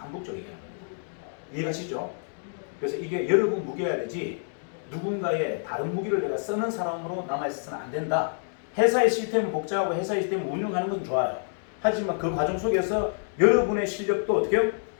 얘기하는 겁니다. 이해가시죠? 그래서 이게 여러분 무기여야 되지 누군가의 다른 무기를 내가 쓰는 사람으로 남아있어서는 안 된다. 회사의 시스템은 복잡하고 회사의 시스템을 운영하는 건 좋아요. 하지만 그 과정 속에서 여러분의 실력도 어떻게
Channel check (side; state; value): right; silent; digital silence